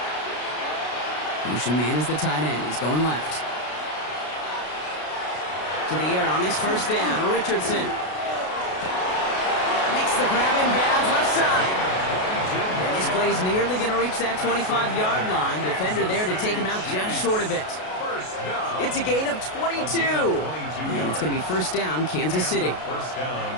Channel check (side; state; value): right; late; 33 ms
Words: Motion man is the tight end. He's going left. To the air on this first down. Richardson makes the grab in bounds left side. And this play's nearly going to reach that 25-yard line. Defender there to take him out just short of it. It's a gain of 22. And it's going to be first down, Kansas City. First